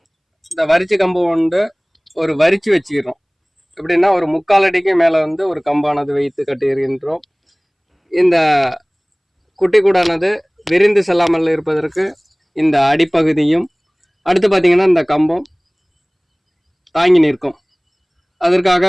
இந்த வரிச்சு கம்பு கொண்டு ஒரு வரிச்சு வச்சுக்கிறோம். எப்படின்னா ஒரு 3/4 அடிக்கு மேலே வந்து ஒரு கம்பானது வைத்து கட்டியிருக்கின்றோம். இந்த குட்டி கூடானது விரிந்து செல்லாமல் இருப்பதற்கு இந்த அடிப்பகுதியும் அடுத்து பார்த்திங்கன்னா இந்த கம்பம் தாங்கி நிற்கும்.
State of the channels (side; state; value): both; identical; correlation 1.00